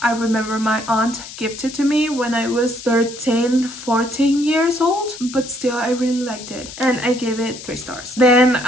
I remember my aunt gifted to me when I was 13, 14 years old. But still, I really liked it. And I gave it 3 stars. Then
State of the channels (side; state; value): left; noise; hiss, 13 dB below the sound